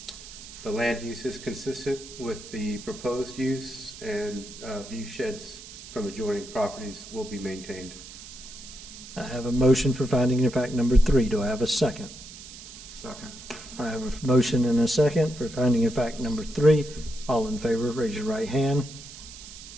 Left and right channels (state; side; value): noise; right; hiss, 15 dB below the sound